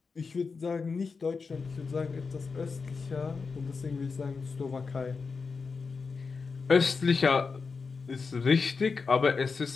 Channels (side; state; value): right; quieter; 4.8 dB